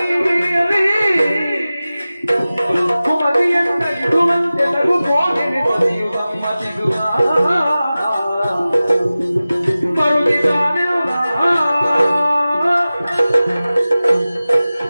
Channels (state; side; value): inverted; both; correlation -0.96